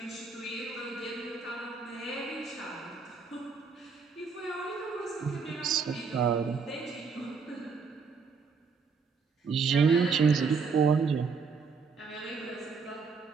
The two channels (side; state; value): left; quieter; 5.2 dB